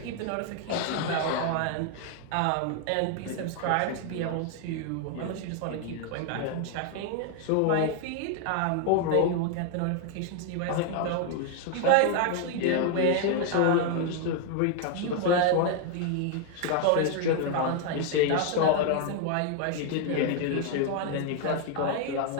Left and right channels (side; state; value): both; different; correlation 0.00